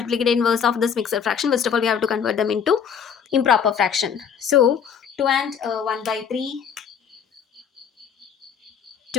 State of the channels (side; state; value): right; quieter; 7.4 dB